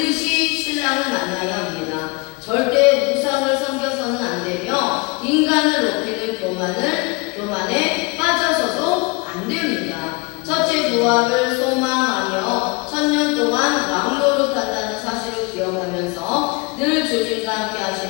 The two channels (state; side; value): quieter; right; 28.1 dB